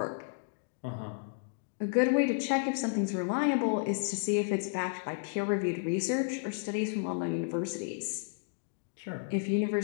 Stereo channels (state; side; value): silent; right; digital silence